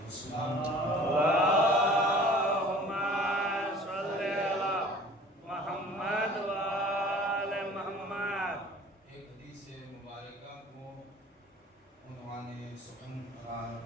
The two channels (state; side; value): normal; both; correlation 0.47